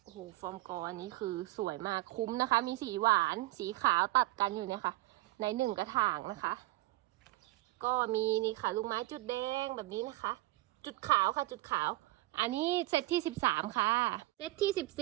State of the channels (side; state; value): left; quieter; 18.9 dB